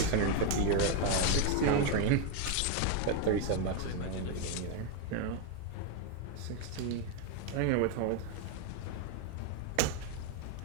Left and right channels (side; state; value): both; different; correlation 0.01